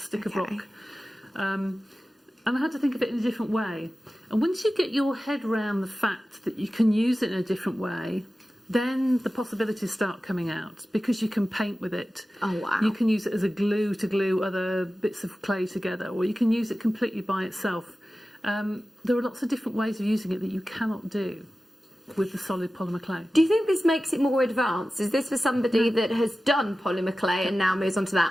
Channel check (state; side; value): normal; both; correlation 0.95